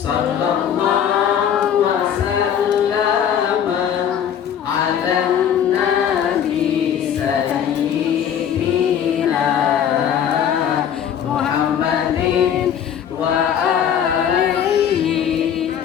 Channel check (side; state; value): right; quieter; 8.9 dB